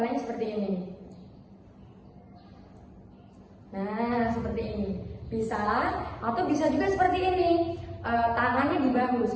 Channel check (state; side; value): identical; both; correlation 1.00